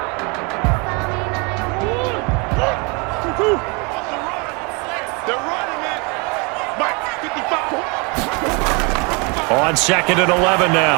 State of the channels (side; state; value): left; quieter; 31.1 dB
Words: On 2nd and 11